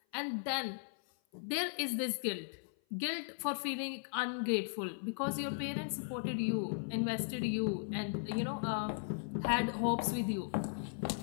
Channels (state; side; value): silent; right; 53 dB below the other